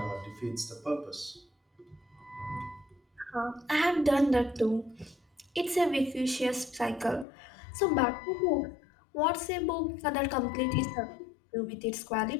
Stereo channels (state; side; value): drops out; right; at 7.2 s